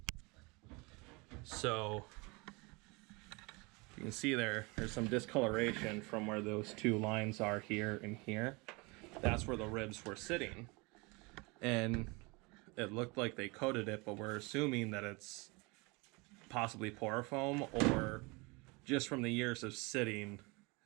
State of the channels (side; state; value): left; quieter; 27.1 dB